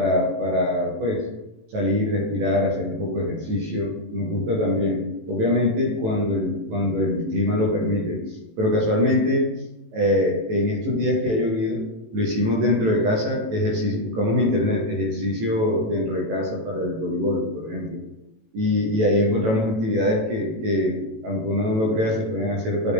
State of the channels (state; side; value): late; left; 18 ms